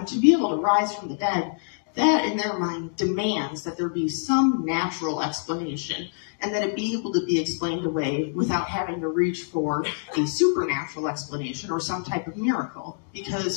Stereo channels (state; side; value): silent; right; digital silence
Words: to be able to rise from the dead, that in their mind demands that there be some natural explanation, and that it be able to be explained away without having to reach for a supernatural explanation or some type of miracle.